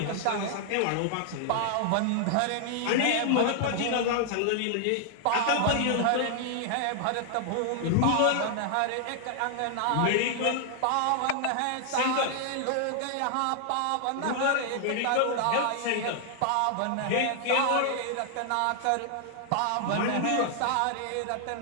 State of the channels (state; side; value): different; both; correlation 0.00